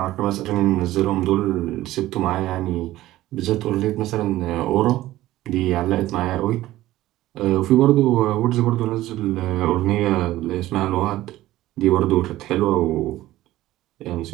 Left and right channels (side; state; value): left; quieter; 15.7 dB